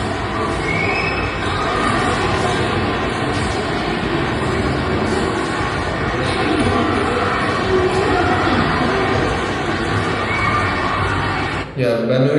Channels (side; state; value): both; identical; correlation 1.00